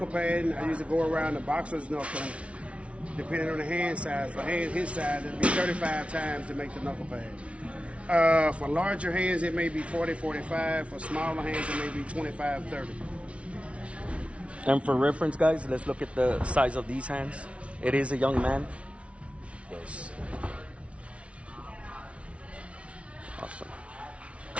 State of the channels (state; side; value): late; left; 0.062 ms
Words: pad, I usually go around the boxer's knuckle, depending on the hand size. For his size, it'll be 35 times to make the knuckle pad. For larger hands, it may be 40, 45. For smaller hands, it may be 25, 30. And for reference, guys, let's look at the size of these hands. It is a young man. Yes. Awesome.